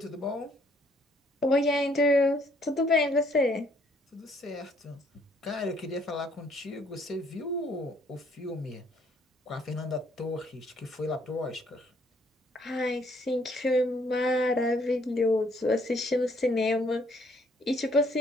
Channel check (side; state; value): both; normal; correlation 0.65